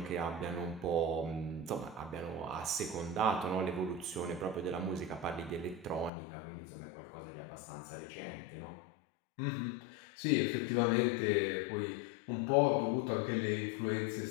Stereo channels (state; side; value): drops out; right; at 6.1 s